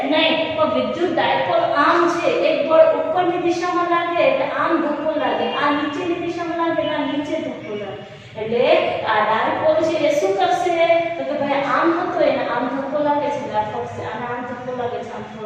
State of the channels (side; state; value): both; identical; correlation 1.00